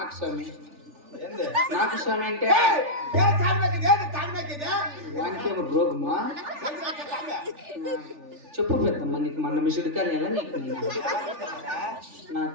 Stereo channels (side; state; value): left; late; 3.4 ms